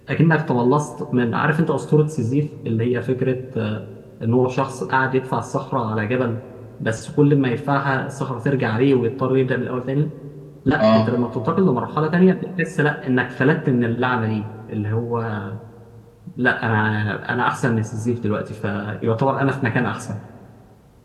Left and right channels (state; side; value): identical; both; correlation 1.00